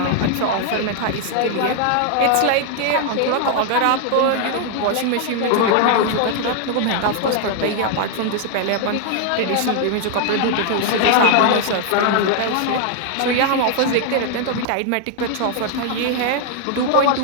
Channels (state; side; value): different; both; correlation 0.00